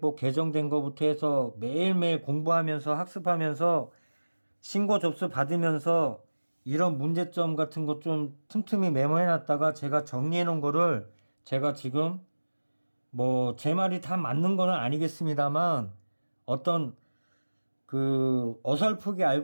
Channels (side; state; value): both; inverted; correlation -1.00